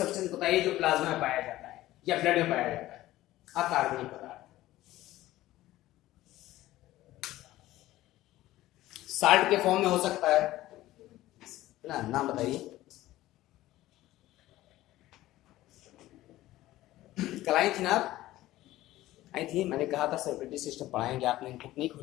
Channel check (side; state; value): right; quieter; 15.9 dB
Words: बताइए जो प्लाज्मा में पाया जाता है या ब्लड में पाया जाता है, अकार्बनिक पदार्थ। साल्ट के फॉर्म में हो सकता है ना, नाम बताइए। कल आई थी ना आप? आई थी, मैंने कहा था सर्कुलेटरी सिस्टम पढ़ाएंगे, आपने बुक नहीं